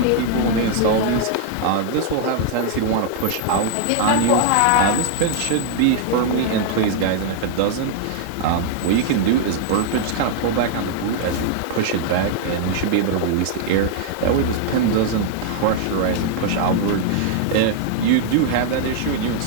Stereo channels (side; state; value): both; different; correlation -0.01